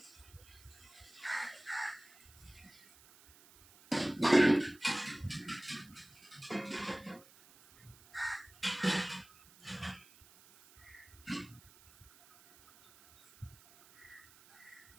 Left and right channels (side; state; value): right; noise; hiss, 24 dB below the sound